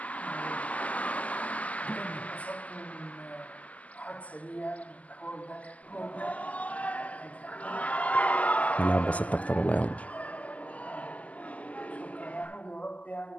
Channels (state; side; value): late; right; 0.072 ms